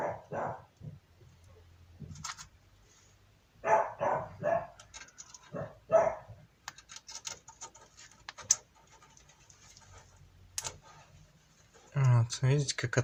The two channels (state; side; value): identical; both; correlation 1.00